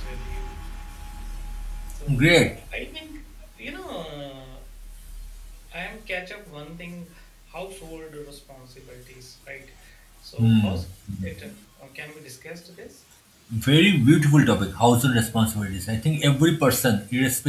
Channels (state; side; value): identical; both; correlation 1.00